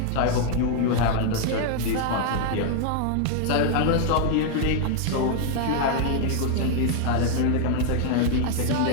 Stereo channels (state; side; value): different; both; correlation 0.00